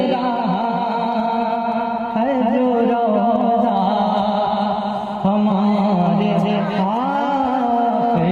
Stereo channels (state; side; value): identical; both; correlation 1.00